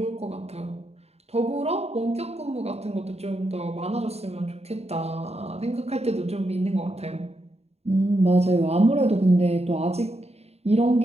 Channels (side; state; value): left; late; 0.30 ms